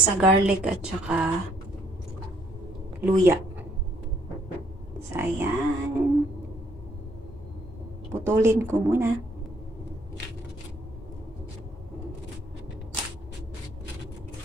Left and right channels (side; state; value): both; normal; correlation 0.66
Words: garlic at saka luya. So, ayan. Putulin ko muna.